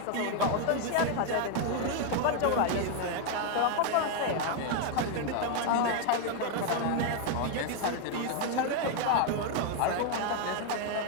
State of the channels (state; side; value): different; both; correlation 0.01